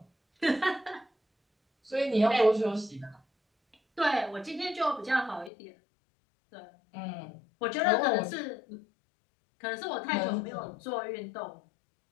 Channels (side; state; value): right; drops out; at 5.5 s